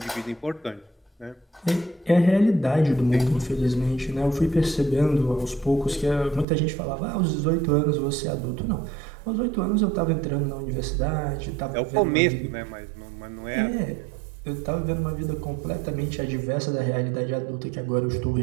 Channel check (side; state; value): left; drops out; at 6.5 s